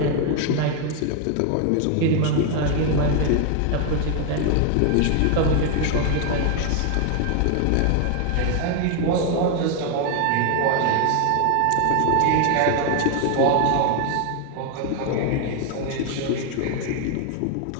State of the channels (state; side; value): different; both; correlation 0.01